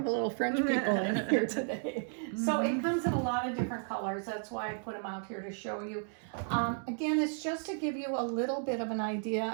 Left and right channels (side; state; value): left; silent; 55 dB below the other